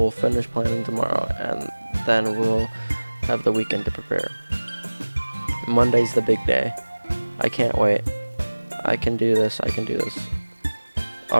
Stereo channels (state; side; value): inverted; both; correlation -1.00